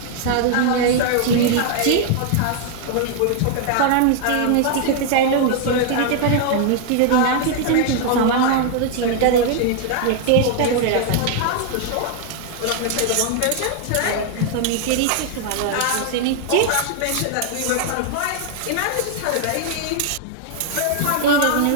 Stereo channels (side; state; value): both; different; correlation 0.00